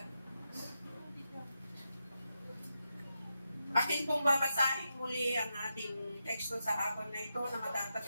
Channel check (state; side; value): inverted; both; correlation -0.87